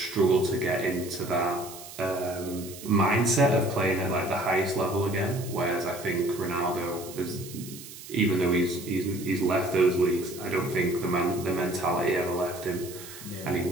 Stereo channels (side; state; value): right; noise; hiss, 15 dB below the sound